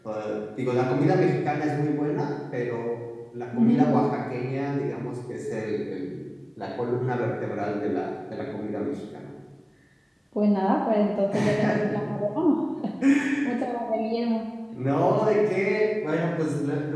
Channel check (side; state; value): both; identical; correlation 1.00